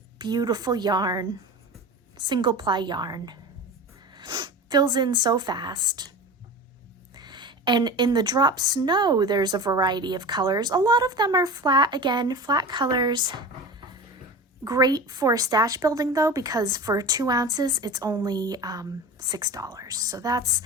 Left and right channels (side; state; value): both; normal; correlation 0.31